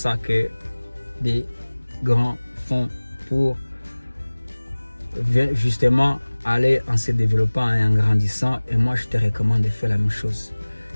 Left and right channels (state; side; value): inverted; both; correlation -1.00